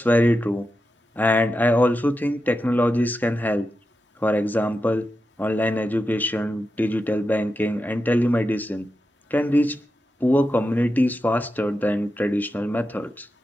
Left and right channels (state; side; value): normal; both; correlation 0.89